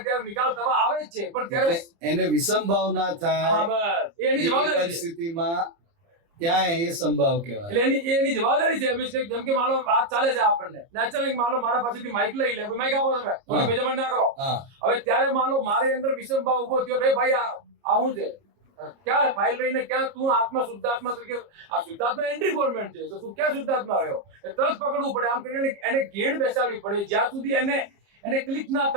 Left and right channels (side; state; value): left; late; 29 ms